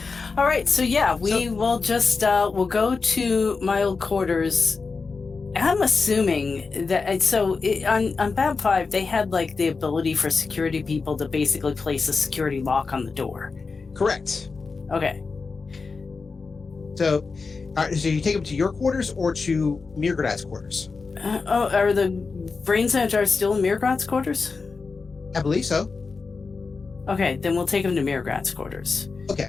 All right, so yeah, we will just we'll go to my old quarters. I'm assuming that on BAB 5 they had like the ability for security people to basically place a security lock on the door. Correct. Okay. So you take them to your quarters or to mrr'grr'rat's quarters? Are the brain centers still in mrr'grr'rat's quarters? I believe so. Okay, then we'll take them to mrr'grr'rat's quarters. Okay.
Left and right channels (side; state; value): right; quieter; 4.5 dB